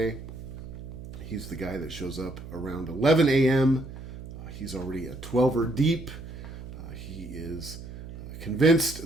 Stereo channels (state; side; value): noise; right; hum, 12 dB below the sound